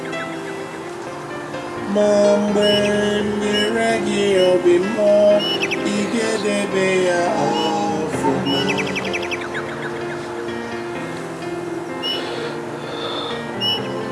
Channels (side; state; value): both; identical; correlation 1.00